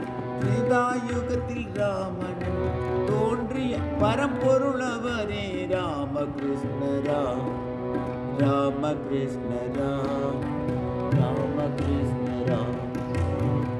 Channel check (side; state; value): both; identical; correlation 1.00